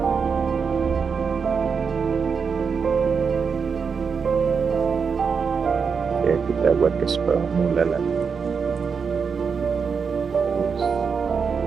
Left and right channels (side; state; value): left; quieter; 5.8 dB